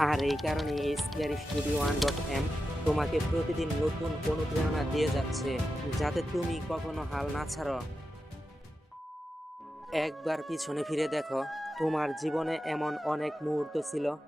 আর এই কারণে এই স্কেয়ারি স্টুডিও 1.m তোমাকে প্রতিদিন নতুন অনুপ্রেরণা দিয়ে যাচ্ছে, যাতে তুমি কখনো হাল না ছাড়ো। একবার পিছনে ফিরে দেখো, তোমার জীবনে এমন অনেক মুহূর্ত ছিল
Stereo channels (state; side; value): normal; both; correlation 0.90